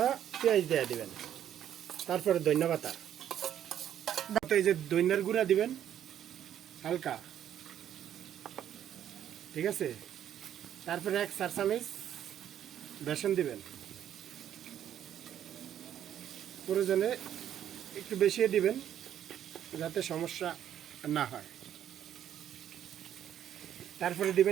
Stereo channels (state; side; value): quieter; left; 10.4 dB